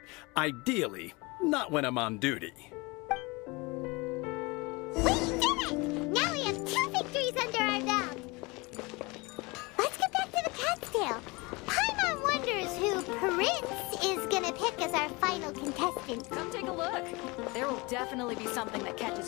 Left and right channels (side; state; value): right; quieter; 25.5 dB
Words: ideally, not when I'm on duty. We did it! Now we have 2 victories under our belt. Let's get back to the cat's tail. Paimon wonders who Prince is gonna pick as our final contestant. Come take a look. There will definitely be something that